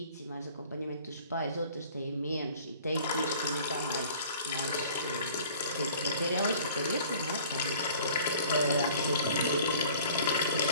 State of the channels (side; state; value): both; inverted; correlation -0.50